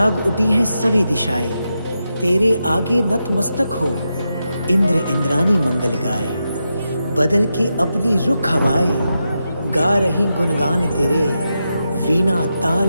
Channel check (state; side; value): inverted; both; correlation -0.87